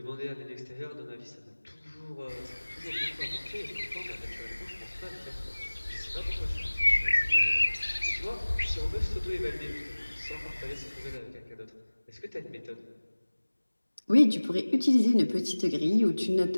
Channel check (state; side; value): inverted; both; correlation -1.00